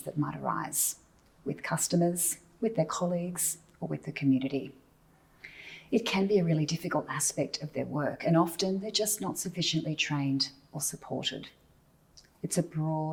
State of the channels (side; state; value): both; identical; correlation 1.00